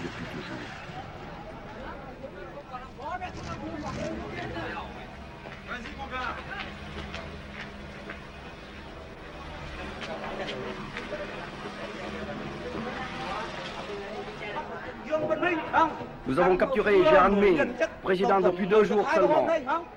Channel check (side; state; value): both; identical; correlation 1.00